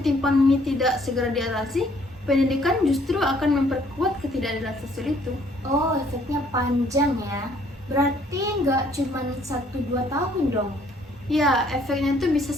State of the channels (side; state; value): both; normal; correlation 0.63